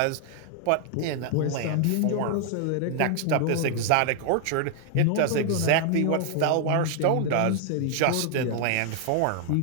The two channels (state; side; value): different; both; correlation 0.00